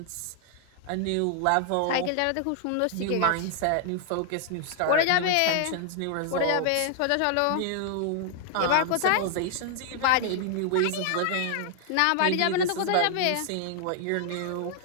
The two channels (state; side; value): different; both; correlation 0.00